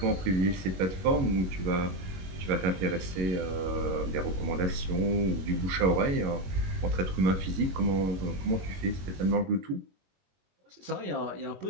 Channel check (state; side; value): late; left; 21 ms